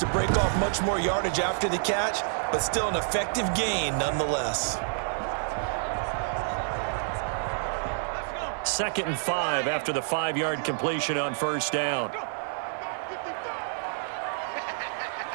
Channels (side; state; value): left; silent; digital silence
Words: break off much more yardage after the catch, but still an effective gain nonetheless. 2nd and 5 after the 5-yard completion on 1st down.